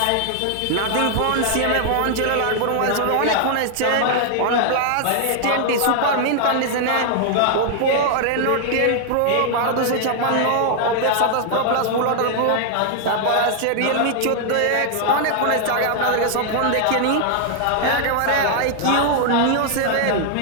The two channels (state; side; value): different; both; correlation 0.00